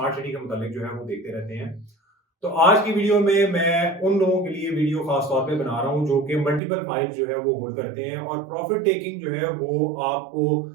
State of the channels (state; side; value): drops out; left; at 6.6 s